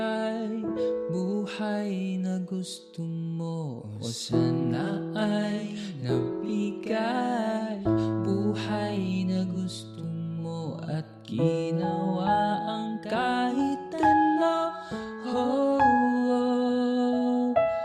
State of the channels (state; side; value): identical; both; correlation 1.00